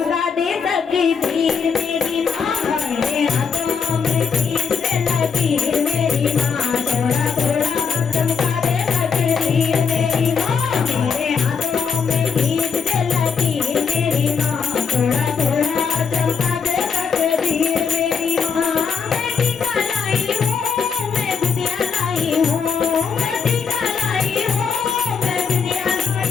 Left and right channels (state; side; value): quieter; right; 6.2 dB